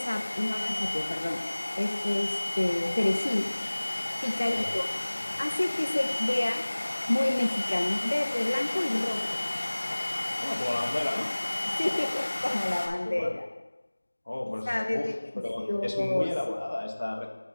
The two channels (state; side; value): inverted; both; correlation -1.00